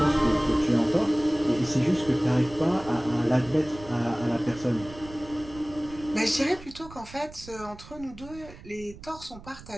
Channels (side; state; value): right; noise; rumble, 17 dB below the sound